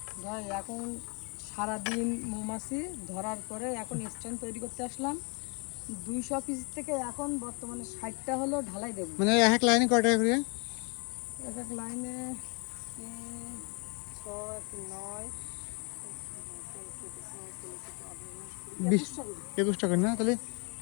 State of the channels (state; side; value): quieter; right; 34.2 dB